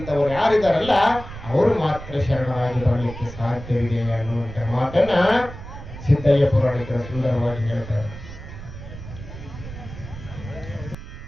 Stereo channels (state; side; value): noise; right; rumble, 12 dB below the sound